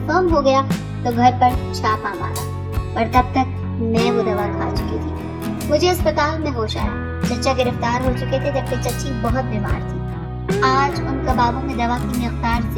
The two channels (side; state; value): both; identical; correlation 1.00